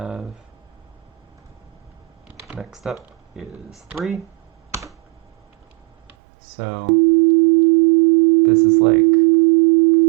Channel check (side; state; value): left; drops out; at 6.2 s